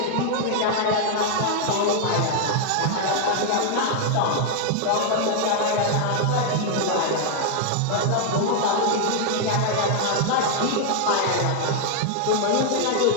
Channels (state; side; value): different; both; correlation 0.00